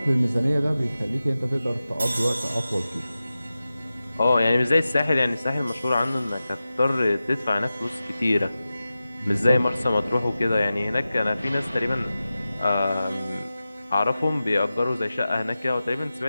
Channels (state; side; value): inverted; both; correlation -0.94